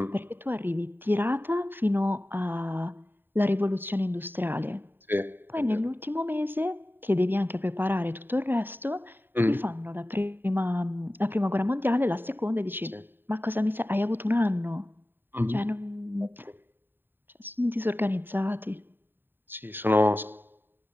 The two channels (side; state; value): left; late; 0.095 ms